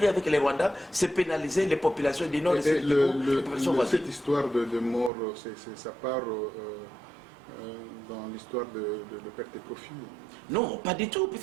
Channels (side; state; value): left; drops out; at 5.1 s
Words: avec les Rwandais, c'est pénaliser les populations du Nord et les populations voisines. Cette histoire de mort, ça part dans l'histoire de perte et profit? Non, pas du tout,